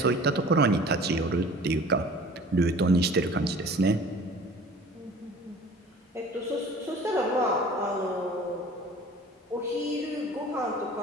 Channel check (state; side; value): normal; both; correlation 0.45